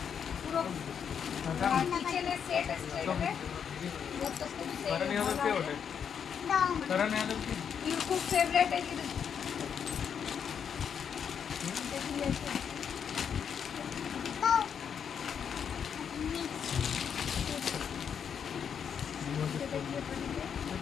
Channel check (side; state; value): right; quieter; 7.5 dB